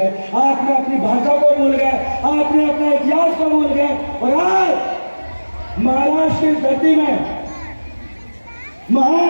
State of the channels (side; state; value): both; inverted; correlation -1.00